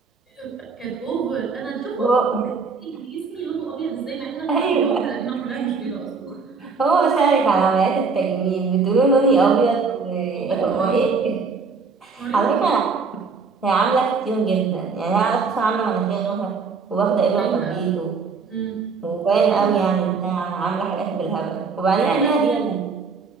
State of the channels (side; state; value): left; quieter; 4.8 dB